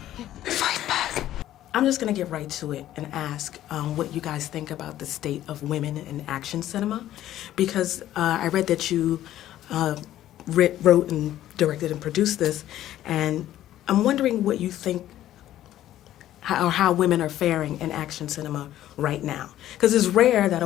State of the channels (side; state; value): right; quieter; 13.0 dB